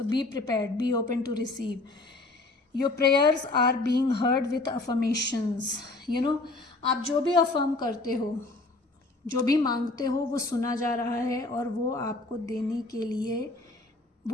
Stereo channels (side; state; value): right; quieter; 3.1 dB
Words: be prepared, be open to receive, your prayers are being heard with affirmations, आप जो भी अफर्म करते हो, जो भी मांगते हो, वो सुना जा रहा है और वो आपको देने के लिए